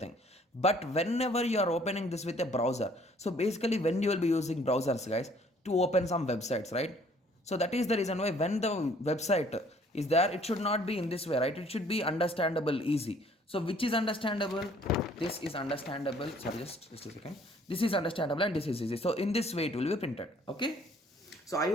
But whenever you are opening this with a browser, so basically when you will be using browsers, guys, to open some websites, right? So that is the reason why when the website is there, it should not be in this way, right? It should be understandable, easy. So which is understandable? This is understandable. Sorry, just a second. This is understandable and this is easy. So in this way it will be printed. Okay. So I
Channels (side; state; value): both; normal; correlation 0.59